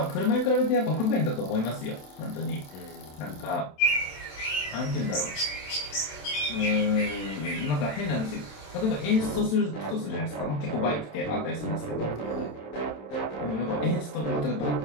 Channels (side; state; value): right; late; 27 ms